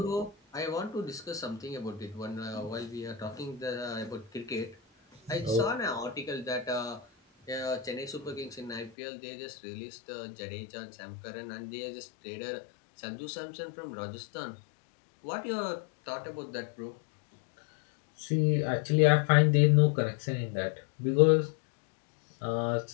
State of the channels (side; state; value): right; drops out; at 8.9 s